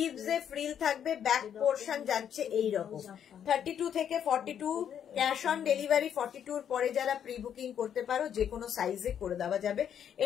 ফ্রিল থাকবে। ব্যাক পোর্শন যাচ্ছে এইরকম। 32 থেকে 42 ক্যাশ অন ডেলিভারি। 42 পরে যারা প্রি বুকিং করতে পারো, যে কোনো সাইজে করে দেওয়া যাবে।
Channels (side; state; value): right; quieter; 8.9 dB